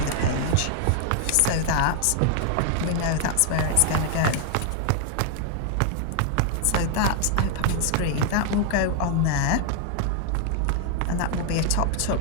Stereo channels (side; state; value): both; different; correlation 0.00